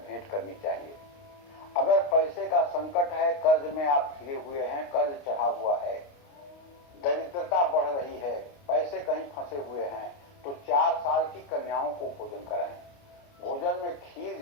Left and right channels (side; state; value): right; late; 29 ms